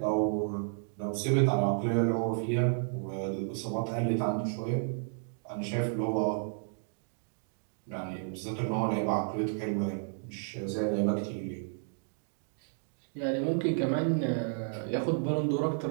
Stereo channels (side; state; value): left; silent; digital silence